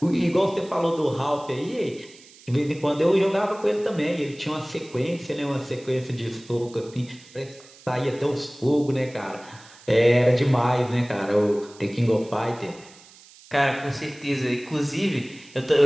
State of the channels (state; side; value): noise; right; hiss, 23 dB below the sound